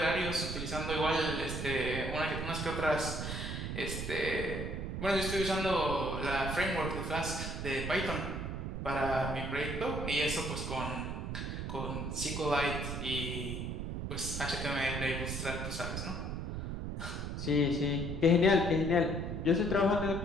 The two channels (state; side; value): noise; right; rumble, 4 dB below the sound